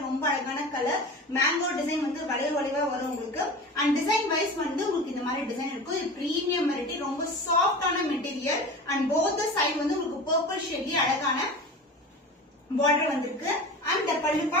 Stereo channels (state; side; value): normal; both; correlation 0.33